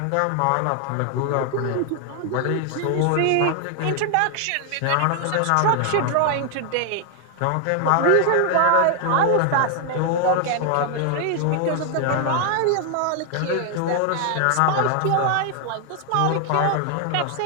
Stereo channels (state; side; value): different; both; correlation 0.00